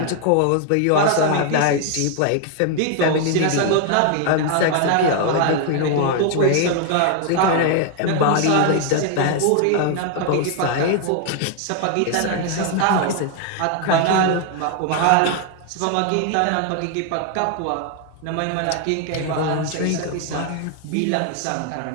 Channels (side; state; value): both; different; correlation 0.00